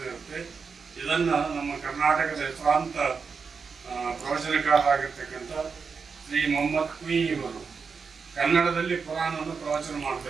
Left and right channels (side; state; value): left; quieter; 5.4 dB